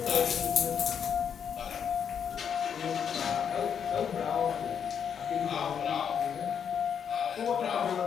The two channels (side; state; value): right; quieter; 7.7 dB